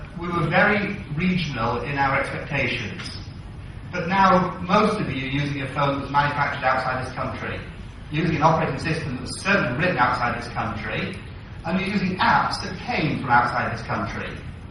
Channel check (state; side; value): identical; both; correlation 1.00